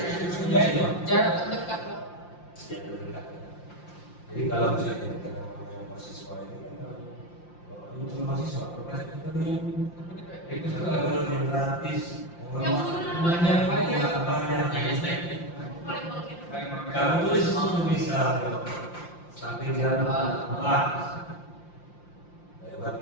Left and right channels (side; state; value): right; late; 5.8 ms